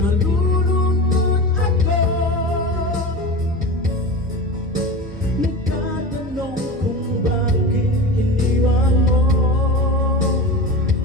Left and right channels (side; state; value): both; normal; correlation 0.29